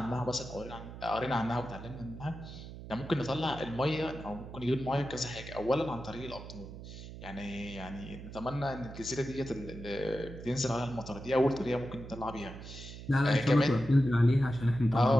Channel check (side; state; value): right; noise; hum, 12 dB below the sound